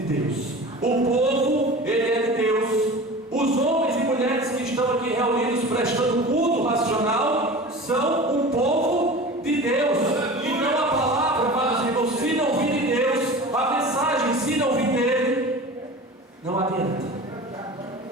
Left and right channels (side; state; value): both; normal; correlation 0.36